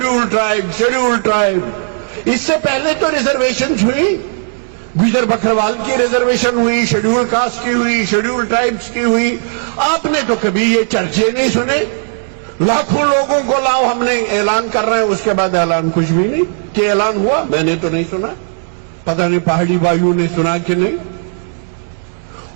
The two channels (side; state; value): left; silent; 65 dB below the other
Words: ٹرائب. اس سے پہلے تو ریزرویشن ہوئی, گجر بکروال کی ریزرویشن ہوئی, شیڈیول کاسٹ کی ہوئی, شیڈیول ٹرائبس کی ہوئی. آپ نے تو کبھی یہ چرچے نہیں سنے. لاکھوں لوگوں کو لاؤ, ہم نے اعلان کر رہے ہیں, اس کے بعد اعلان کچھ بھی نہیں. کہ اعلان ہوا میں نے تو نہیں سنا, پتہ نہیں پہاڑی بھائیوں نے سنا کہ نہیں.